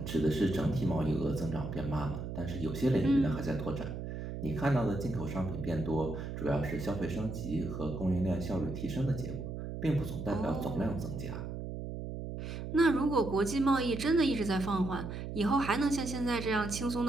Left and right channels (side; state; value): right; noise; hum, 6 dB below the sound